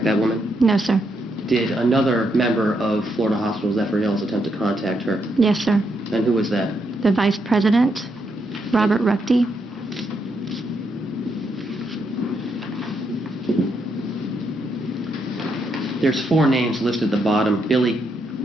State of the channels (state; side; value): normal; both; correlation 0.79